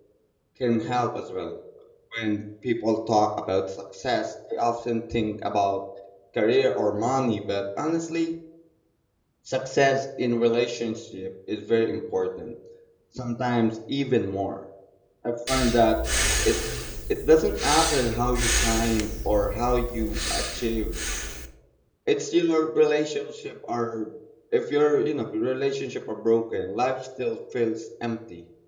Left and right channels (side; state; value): both; identical; correlation 1.00